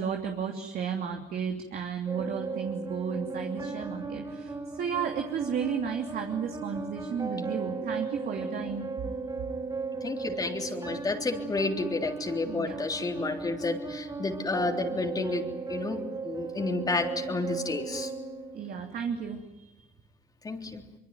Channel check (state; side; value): normal; both; correlation 0.53